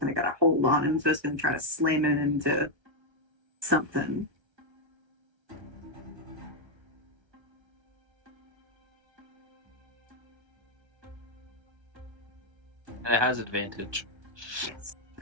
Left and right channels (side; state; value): left; late; 1.2 ms